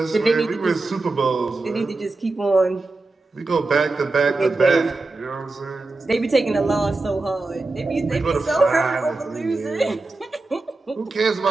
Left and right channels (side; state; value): left; quieter; 3.3 dB